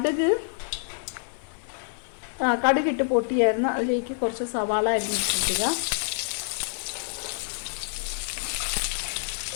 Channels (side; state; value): right; silent; digital silence